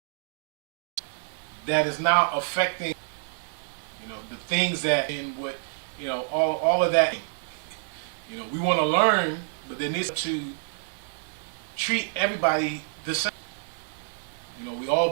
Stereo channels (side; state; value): left; silent; digital silence